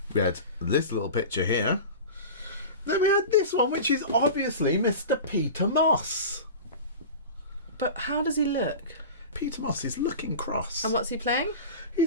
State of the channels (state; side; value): inverted; both; correlation -0.31